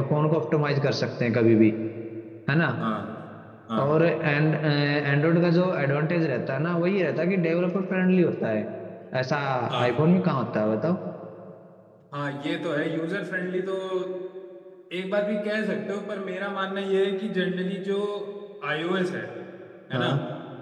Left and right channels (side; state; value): both; identical; correlation 1.00